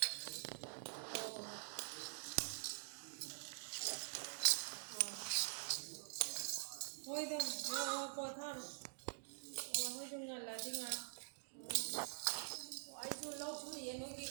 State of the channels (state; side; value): silent; left; digital silence